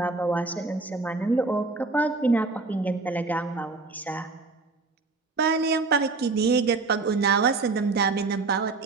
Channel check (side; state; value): left; quieter; 3.8 dB